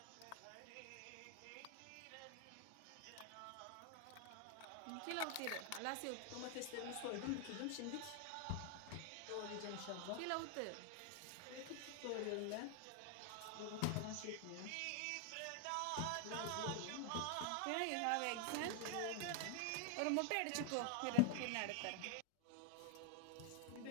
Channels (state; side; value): different; both; correlation 0.00